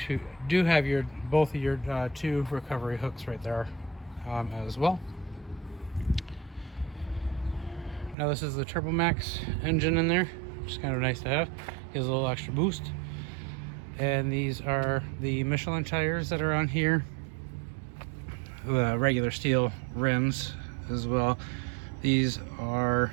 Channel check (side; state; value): left; drops out; at 8.2 s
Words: have both of your two recovery hooks right there as well. Now this is the Turbo Max engine in there, which is kind of nice to have. Gives a little extra boost. And these are the Michelin tires that are on here. The regular steel rims as well. These are